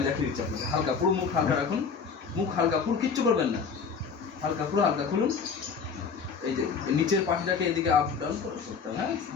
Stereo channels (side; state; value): right; quieter; 5.8 dB